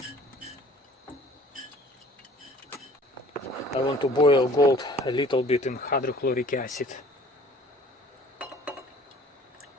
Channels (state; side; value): normal; both; correlation 0.51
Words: I want to boil gold a little bit in hydrochloric acid.